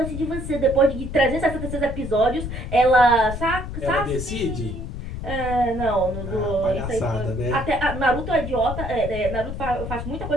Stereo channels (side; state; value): left; noise; rumble, 7 dB below the sound